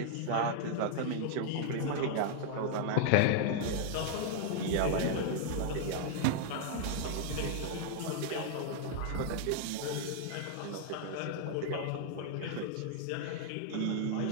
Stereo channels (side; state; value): both; different; correlation -0.01